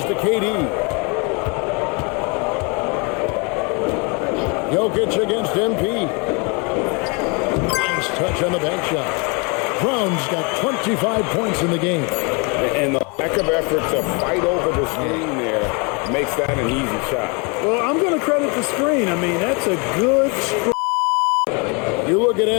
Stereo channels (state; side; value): quieter; right; 32.0 dB